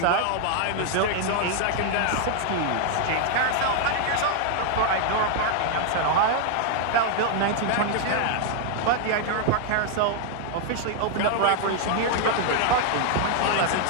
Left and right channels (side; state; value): both; different; correlation 0.00